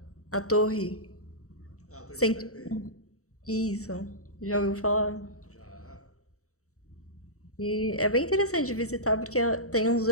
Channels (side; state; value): right; late; 0.65 ms